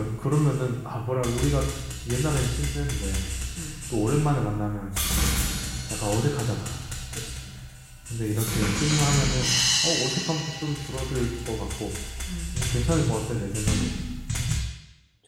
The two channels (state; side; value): identical; both; correlation 1.00